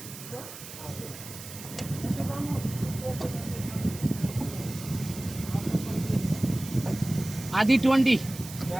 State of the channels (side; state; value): right; noise; hiss, 13 dB below the sound